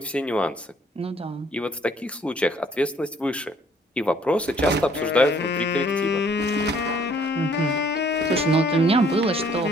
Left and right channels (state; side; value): normal; both; correlation 0.61